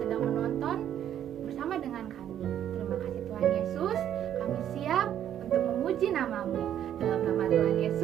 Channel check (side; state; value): left; quieter; 10.4 dB